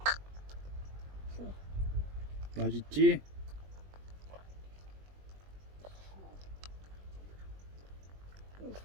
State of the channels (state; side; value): late; left; 21 ms